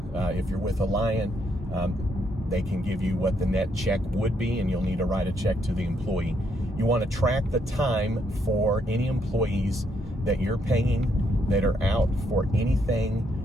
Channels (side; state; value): both; normal; correlation 0.74